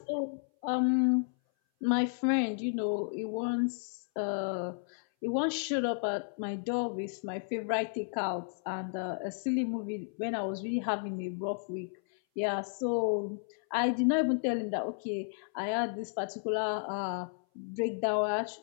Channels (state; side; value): silent; right; 56 dB below the other